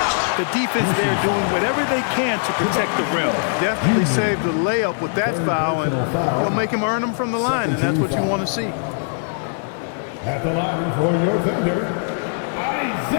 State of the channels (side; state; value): right; silent; 65 dB below the other